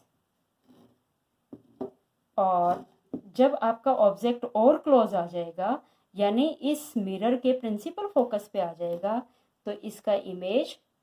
और जब आपका ऑब्जेक्ट और क्लोज आ जाएगा, यानी इस मिरर के प्रिंसिपल फोकस पे आ जाएगा, तो इसका इमेज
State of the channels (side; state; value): both; identical; correlation 1.00